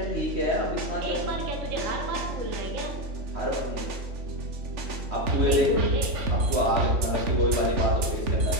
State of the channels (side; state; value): left; late; 3.4 ms